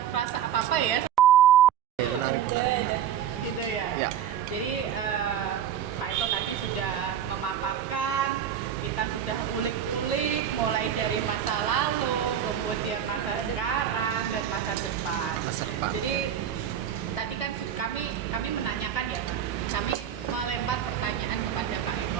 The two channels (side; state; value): left; quieter; 9.5 dB